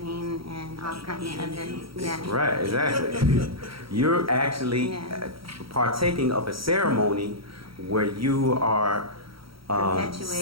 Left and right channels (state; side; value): late; left; 0.75 ms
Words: and all kinds of other, yeah. Right, exactly. You're actually Yeah. partaking of a ceremony where you are Perpetuating the